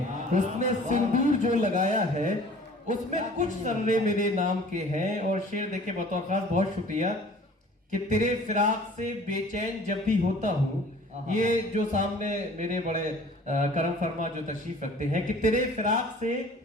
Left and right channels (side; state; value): both; normal; correlation 0.49